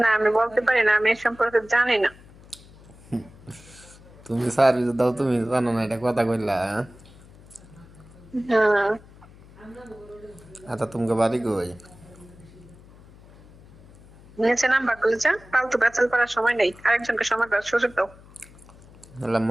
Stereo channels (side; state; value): left; noise; hum, 23 dB below the sound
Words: আমি বলতে পারি না, আমি এ সম্পর্কে জানি না। তুমি সার্ভিস দাও, তুমি জানো না, এটা কথা কইলা? হ্যাঁ। আচ্ছা, তোমাকে বাড়ি কই? নিচে নাম্বার খুলেছে, ফালতু বেচাল করার সময় নেই, আরেকজনকে সময় দেওয়ার সুযোগ দাও। এলা